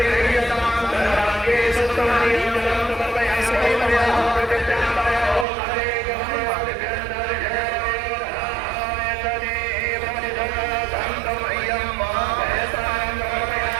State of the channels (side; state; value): left; drops out; at 5.5 s